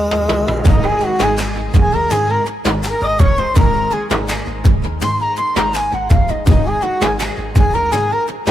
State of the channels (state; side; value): normal; both; correlation 0.88